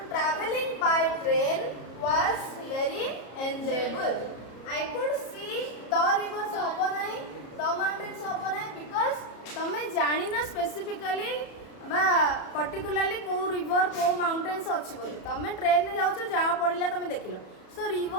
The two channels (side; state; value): right; late; 34 ms